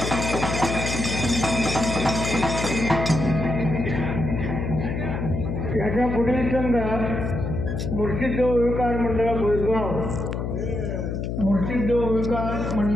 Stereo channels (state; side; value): noise; left; hum, 3 dB below the sound